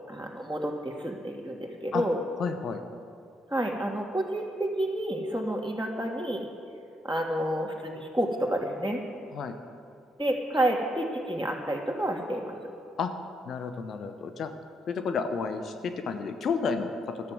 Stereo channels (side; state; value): both; normal; correlation 0.78